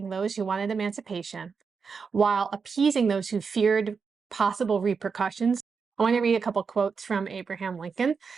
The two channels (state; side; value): quieter; left; 5.5 dB